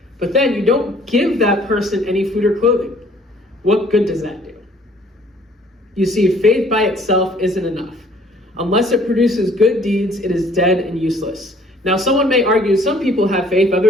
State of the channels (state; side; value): normal; both; correlation 0.58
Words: But then you don't give that person any food or clothing. What good does that do? You see, faith by itself isn't enough. Unless it produces good deeds, it is dead and useless. Now, someone may argue some people have faith,